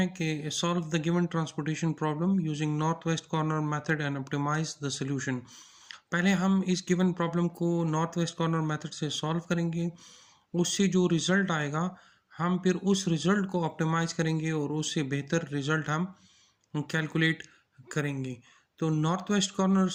कि solve the given transportation problem using north west corner method and optimize the solution. पहले हम इस गिवन प्रॉब्लम को नॉर्थ वेस्ट कॉर्नर मेथड से सॉल्व करेंगे। उससे जो रिजल्ट आएगा, हम फिर उस रिजल्ट को ऑप्टिमाइज करेंगे और उससे बेहतर रिजल्ट हम कैलकुलेट करेंगे। तो north west corner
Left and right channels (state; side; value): identical; both; correlation 1.00